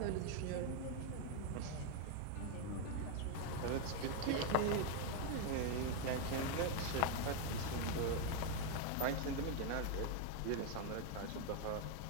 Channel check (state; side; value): different; both; correlation 0.01